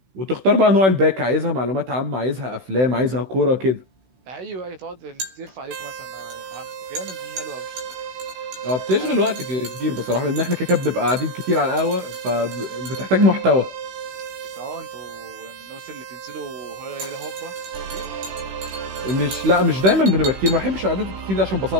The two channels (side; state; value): left; late; 16 ms